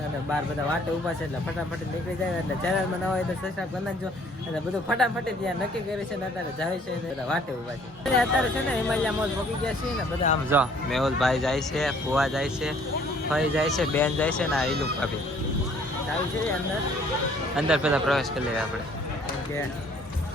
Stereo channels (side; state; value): both; normal; correlation 0.59